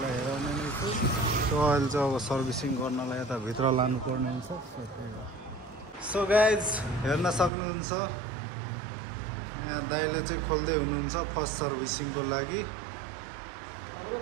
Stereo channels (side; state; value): left; drops out; at 7.5 s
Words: हेराउने नै छु। सो अहिले चाहिँ अब सर्भिसिङ गर्नलाई यता भित्र लानु पर्ने हुन्छ। सो गाइज हेर्न सक्नुहुन्छ यहाँ दाइले चाहिँ खोल्दै हुनुहुन्छ फर्स्ट सर्भिसिङको लागि।